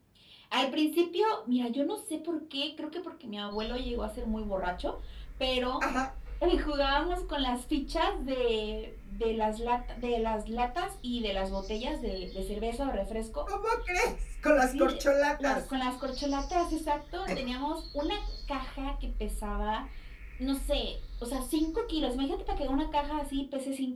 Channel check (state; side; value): identical; both; correlation 1.00